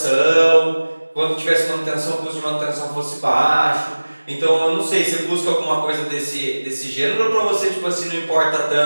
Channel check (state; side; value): inverted; both; correlation -1.00